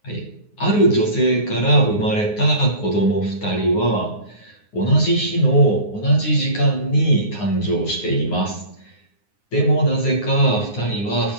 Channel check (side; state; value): right; late; 9.6 ms